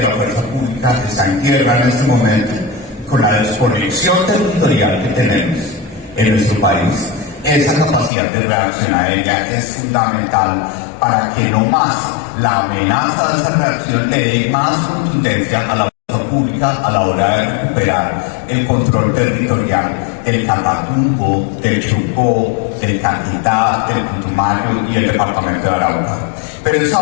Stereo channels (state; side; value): drops out; right; at 8.1 s